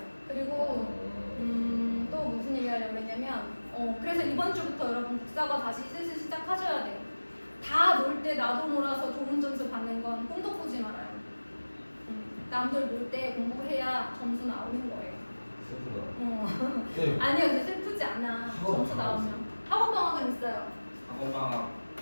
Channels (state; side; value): inverted; both; correlation -1.00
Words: 그리고 또 무슨 얘기 하려고 했냐면 그래서 이번 주부터 여러분 국사가 다시 슬슬 시작하셔야 돼요. 다 놀 때 나도 놀아서 좋은 점수 받는 건 꿈도 꾸지 말아요. 남들 놀 때 공부해야 점수 나오는 거예요. 슬프다. 네. 아니요, 근데 슬프지 않아. 점수 나오면. 학원 방학은 있어요. 학원 방학